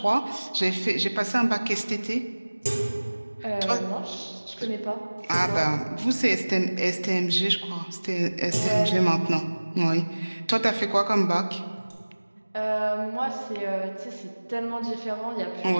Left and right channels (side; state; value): both; inverted; correlation -1.00